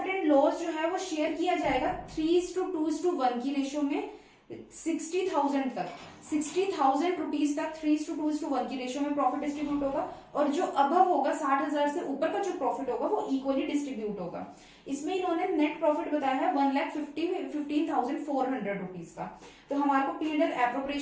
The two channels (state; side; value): identical; both; correlation 1.00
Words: एंड लॉस जो है वो शेयर किया जाएगा 3:2:1 की रेशियो में 60,000 तक, 60,000 रुपीज तक 3:2:1 की रेशियो में प्रॉफिट डिस्ट्रीब्यूट होगा, और जो अबव होगा 60,000 से ऊपर का जो प्रॉफिट होगा वो इक्वली डिस्ट्रीब्यूट होगा। इसमें इन्होंने नेट प्रॉफिट बताया है 1,15,400 रुपीज का। तो हमारे को P&L